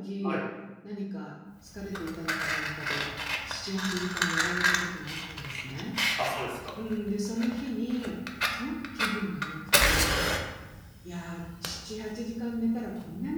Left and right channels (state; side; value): identical; both; correlation 1.00